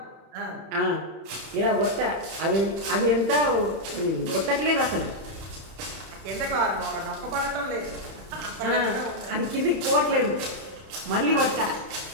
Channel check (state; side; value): late; left; 30 ms